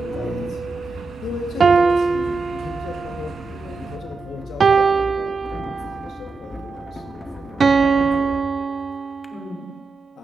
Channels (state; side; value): quieter; left; 4.1 dB